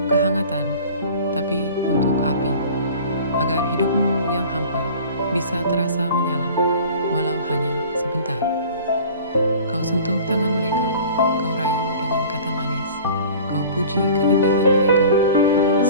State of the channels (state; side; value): inverted; both; correlation -0.43